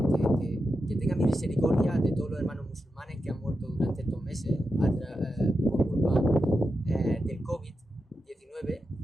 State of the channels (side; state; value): both; normal; correlation 0.88